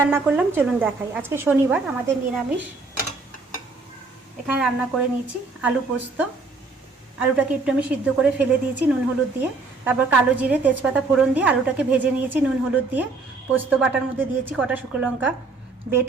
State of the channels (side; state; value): left; quieter; 3.9 dB